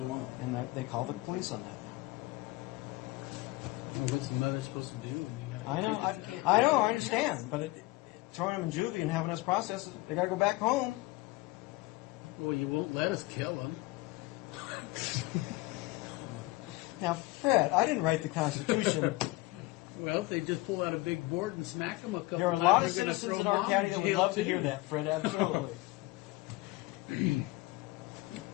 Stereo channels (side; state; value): right; quieter; 21.0 dB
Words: mom. And they call the police on that now. Well, what's the mother supposed to do? I know, You can't do I anything understand, else. but throwing them in juvie and having us process it, they got to go back home. Well, you won't let us kill them. Now, Fred, I didn't write the Constitution. Well, if they just pull out a big board and smack them a couple There are a times, lot of they're gonna citizens throw in our mom county in that would jail, love to too. hear that, Fred, absolutely.